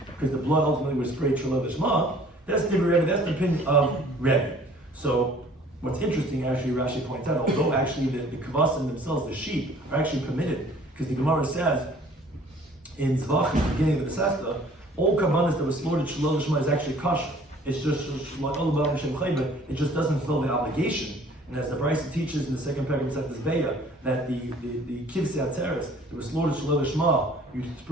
because the blood ultimately was sprayed Shalom Lishma. That's the opinion of Rebbe. So what's interesting, actually, Rashi points out, although actually the kavasim themselves, the sheep, are actually permitted, because the Gemara says in Zvachim, the beginning of the Sefta, all kavanas that were slaughtered Shalom Lishma is actually kosher. It's just it just doesn't fulfill the obligation. And as the Brisa teaches in the second paragraph of Seftas Beya, that the kivsei atzeres that was slaughtered Shalom Lishma, you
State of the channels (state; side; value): normal; both; correlation 0.54